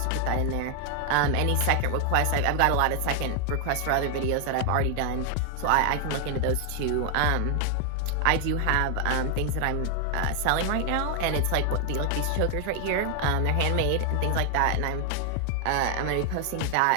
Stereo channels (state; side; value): different; both; correlation 0.00